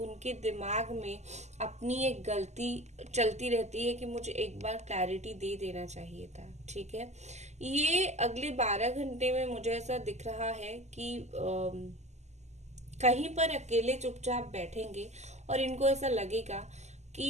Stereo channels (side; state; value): left; late; 0.33 ms